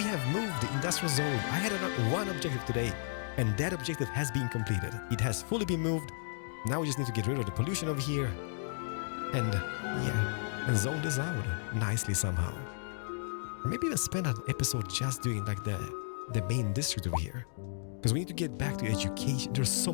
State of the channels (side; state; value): right; silent; digital silence